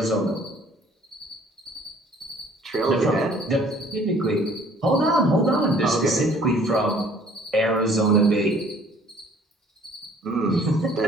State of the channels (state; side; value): normal; both; correlation 0.56